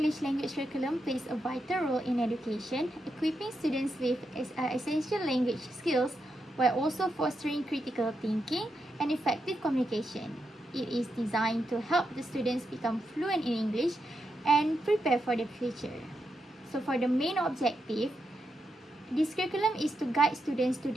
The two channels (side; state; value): both; normal; correlation 0.85